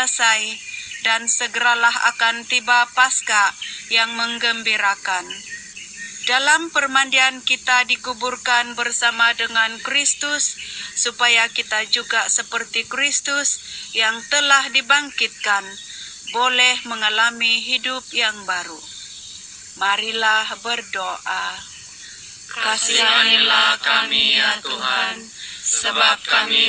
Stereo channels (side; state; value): both; identical; correlation 1.00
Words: dan segeralah akan tiba Paskah yang menggembirakan. Dalam permandian kita dikuburkan bersama dengan Kristus, supaya kita juga seperti Kristus yang telah dibangkitkan, boleh mengalami hidup yang baru. Marilah berdoa. Kasihanilah kami ya Tuhan, sebab kami